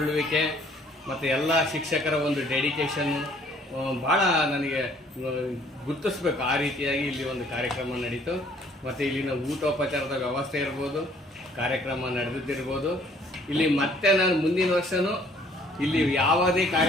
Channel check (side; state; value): both; normal; correlation 0.60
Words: ಮತ್ತು ಎಲ್ಲ ಶಿಕ್ಷಕರ ಒಂದು ಡೆಡಿಕೇಶನ್ ಭಾಳ ನನಗೆ ಗುರುತಿಸ್ಬೇಕು. ಆ ರೀತಿಯಾಗಿ ಇಲ್ಲಿ ಒಂದು ಕಾರ್ಯಕ್ರಮ ನಡೀತು. ಮತ್ತು ಇಲ್ಲಿನ ಊಟೋಪಚಾರದ ವ್ಯವಸ್ಥೆ ಇರ್ಬೋದು, ಕಾರ್ಯಕ್ರಮ ನಡೆದಿದ್ದಿರ್ಬೋದು. ಇಲ್ಲಿ ಮತ್ತೆ ನಾನು ಮುಂದಿನ ವರ್ಷವೂ ಇಲ್ಲಿ ಯಾವುದೇ